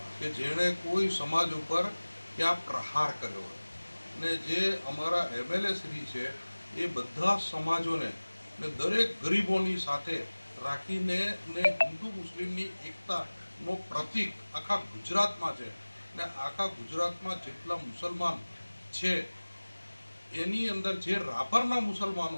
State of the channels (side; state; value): both; inverted; correlation -1.00